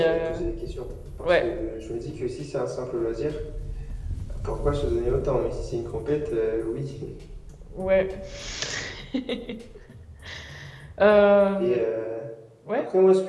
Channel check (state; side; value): identical; both; correlation 1.00